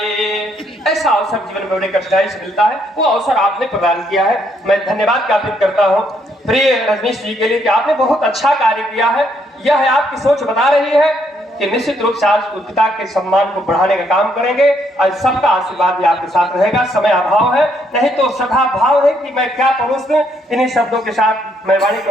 ऐसा अवसर जीवन में बड़े कठिनाई से मिलता है, वो अवसर आपने प्रदान किया है। मैं धन्यवाद ज्ञापित करता हूँ प्रिय रजनीश जी के लिए कि आपने बहुत अच्छा कार्य किया है। यह आपकी सोच बता रही है कि निश्चित रूप से आज पिता के सम्मान को बढ़ाने का काम करेंगे और सबका आशीर्वाद भी आपके साथ रहेगा। समय अभाव है, नहीं तो सदा भाव है कि मैं क्या परोस दूं। इन्हीं शब्दों के साथ मैं वाणी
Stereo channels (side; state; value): both; normal; correlation 0.72